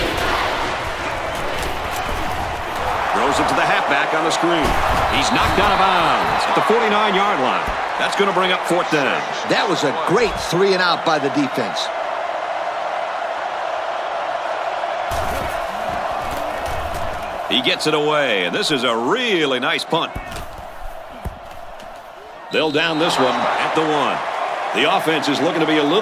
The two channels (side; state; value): both; identical; correlation 1.00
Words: Throws it to the halfback on the screen. He's knocked out of bounds at the 49-yard line. That's going to bring up 4th down. That was a great 3-and-out by the defense. He gets it away, and this is a really nice punt. They'll down this one at the 1. The offense is looking to be a